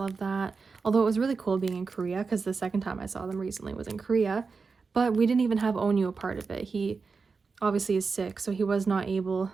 that. Although it was really cool being in Korea because the second time I saw them recently was in Korea, but we didn't even have Onyu a part of it. He obviously is sick, so he was not able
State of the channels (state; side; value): quieter; left; 4.8 dB